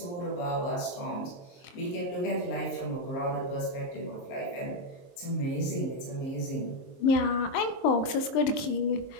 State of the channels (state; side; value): late; right; 22 ms